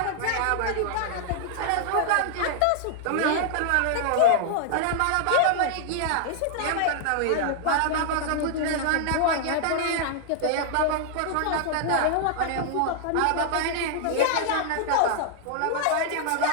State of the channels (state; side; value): different; both; correlation -0.01